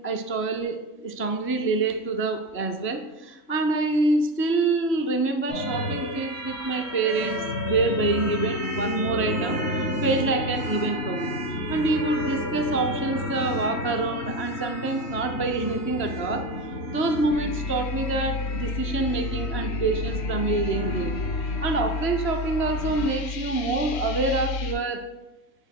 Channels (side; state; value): right; late; 3.1 ms